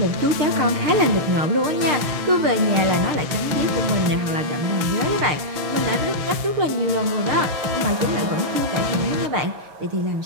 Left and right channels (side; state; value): left; late; 6.1 ms